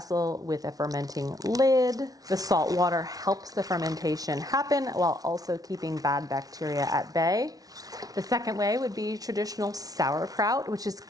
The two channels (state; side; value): late; left; 0.18 ms